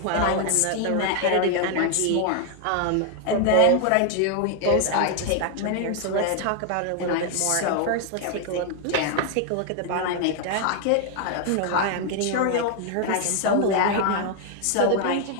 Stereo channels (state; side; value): different; both; correlation 0.00